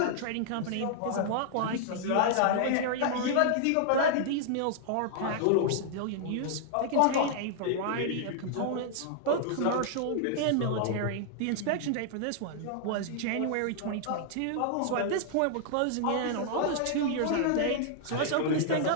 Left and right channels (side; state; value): both; different; correlation -0.01